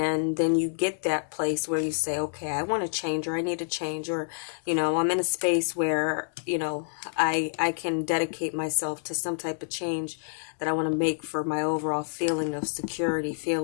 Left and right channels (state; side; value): silent; right; digital silence